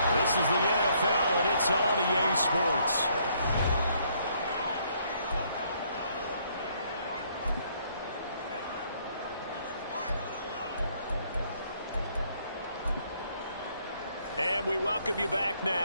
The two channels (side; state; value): both; inverted; correlation -0.68